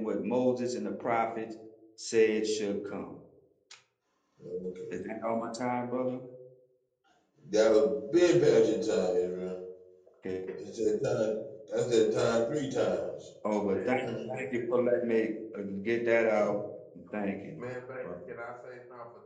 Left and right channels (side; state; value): both; identical; correlation 1.00